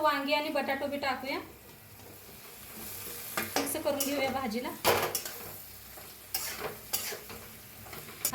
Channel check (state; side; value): identical; both; correlation 1.00